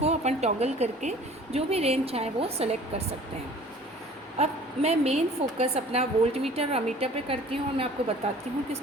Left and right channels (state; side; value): normal; both; correlation 0.48